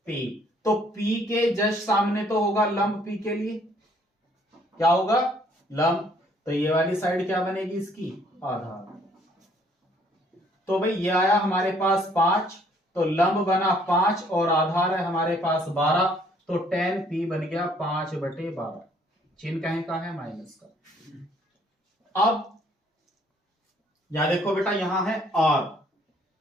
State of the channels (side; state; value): both; normal; correlation 0.63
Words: P। तो P के जस्ट सामने तो होगा लंब। P के लिए क्या होगा? लंब। तो ये वाली साइड क्या बनेगी इसकी? आधार। तो भाई ये आया हमारे पास 5, तो लंब बना 5 और आधार है हमारे पास 12, तो tan P बन गया 5/12। चिन्ह कहीं का है? माइनस का। अब यहां देखो बेटा, यहां है R,